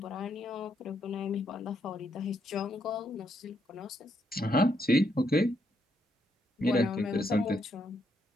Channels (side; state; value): both; normal; correlation 0.77